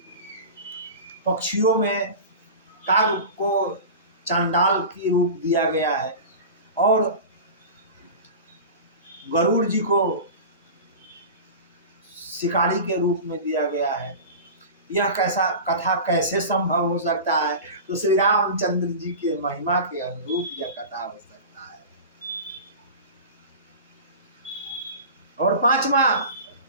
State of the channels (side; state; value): both; inverted; correlation -0.32